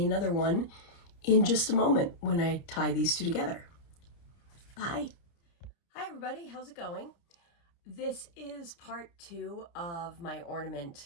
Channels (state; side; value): late; right; 29 ms